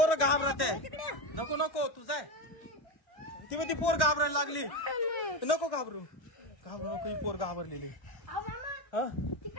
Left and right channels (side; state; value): right; late; 1.1 ms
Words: घाबरत आहे. नको तू जाय. ती पोर घाबरायला लागली. नको घाबरू नको. ही पोर घाबरलेली. ती